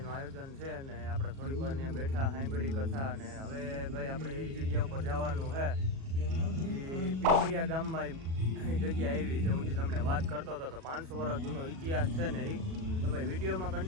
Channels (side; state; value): left; late; 37 ms